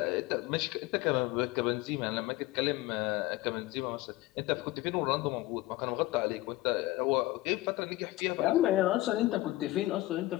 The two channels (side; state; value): right; quieter; 18.2 dB